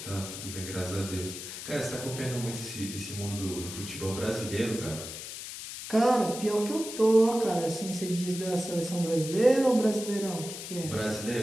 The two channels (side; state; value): left; noise; hiss, 9 dB below the sound